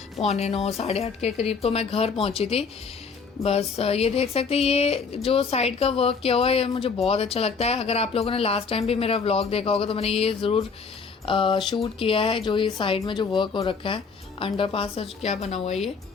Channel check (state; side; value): quieter; right; 5.2 dB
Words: 8:45 8:30 के करीब तो मैं घर पहुंची थी। बस ये देख सकते हैं, ये जो साइड का वर्क किया हुआ है ये मुझे बहुत अच्छा लगता है। अगर आप लोगों ने लास्ट टाइम भी मेरा व्लॉग देखा होगा तो मैंने ये ज़रूर शूट किया है, जो ये साइड में जो वर्क हो रखा है। अंडरपास क्या बना हुआ है ये,